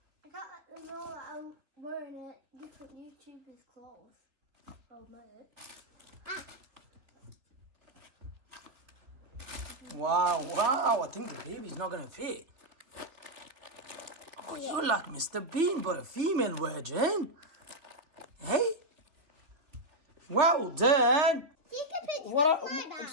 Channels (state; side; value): late; left; 3.5 ms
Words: I got the roll that I'm wearing different YouTubers' clothes. Oh, mate. Wow. I think the baby's not going to fit. Oh, you're like Mr. Bean, but a female virgin. Hey? Well done. Take a picture of my bag.